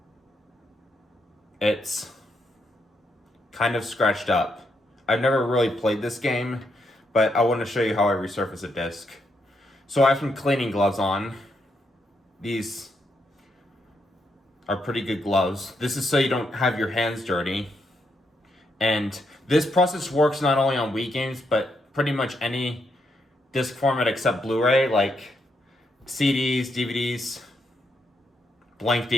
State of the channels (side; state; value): both; normal; correlation 0.79